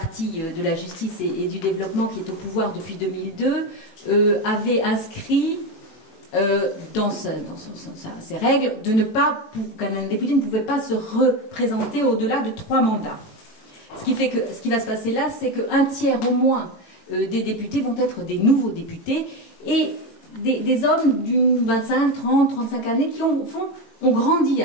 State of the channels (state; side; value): late; right; 18 ms